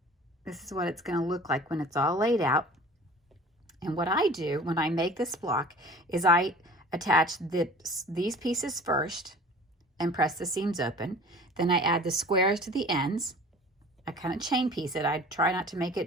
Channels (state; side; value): normal; both; correlation 0.44